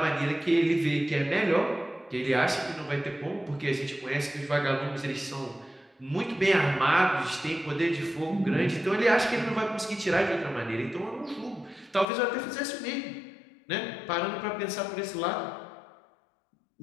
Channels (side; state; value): right; drops out; at 12.1 s